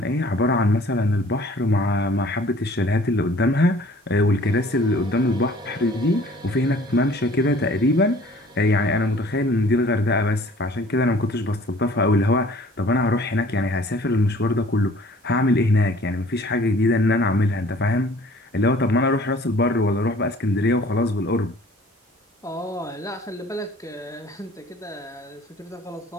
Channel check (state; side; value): normal; both; correlation 0.52